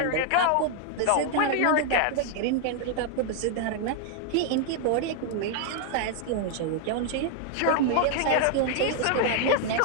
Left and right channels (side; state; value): both; different; correlation 0.00